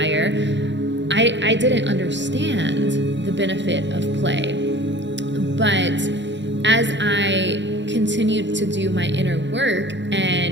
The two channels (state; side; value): late; left; 0.53 ms